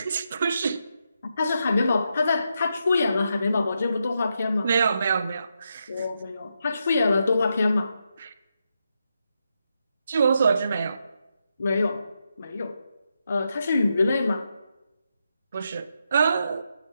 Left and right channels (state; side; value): inverted; both; correlation -0.83